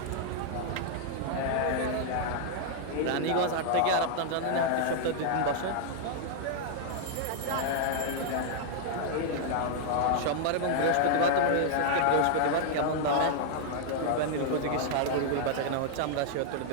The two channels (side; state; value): both; different; correlation -0.01